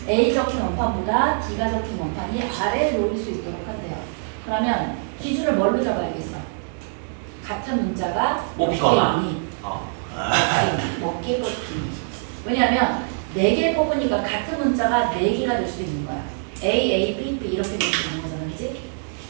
A 적힌 원판보다 D가 적힌 원판이 아래에 놓일 수 있도록 한대요. 그러면 기준을 뭘로 잡아야겠어? 같은 문자가 뽑히거나 몇 개 뽑히니. 왜냐하면 4개 뽑으니까 같은 문자가 4개가 될 수도 있는 거야. A, B, B 이렇게 될 수 있는 거잖아. 그지?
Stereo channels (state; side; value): silent; left; 63 dB below the other